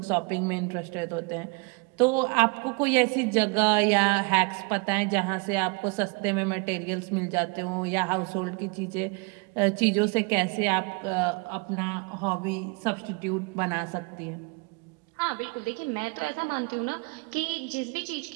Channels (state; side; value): quieter; left; 30.8 dB